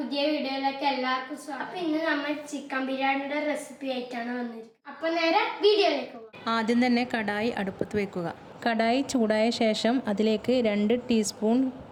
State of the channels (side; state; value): both; identical; correlation 1.00